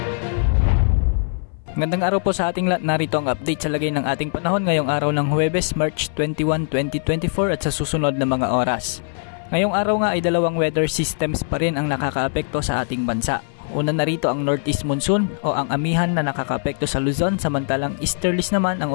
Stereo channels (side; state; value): right; silent; 59 dB below the other